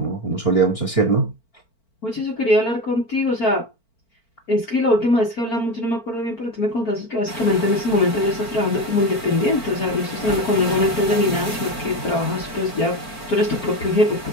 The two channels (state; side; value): late; right; 4.4 ms